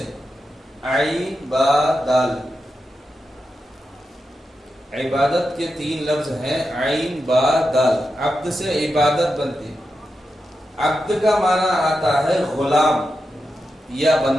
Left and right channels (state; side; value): normal; both; correlation 0.89